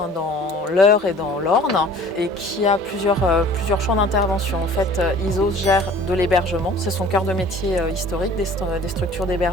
dans l'Eure et dans l'Orne et qui a plusieurs champs d'intervention. En fait, ISOS gère de l'hébergement, c'est son cœur de métier historique, des structures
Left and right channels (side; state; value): both; normal; correlation 0.48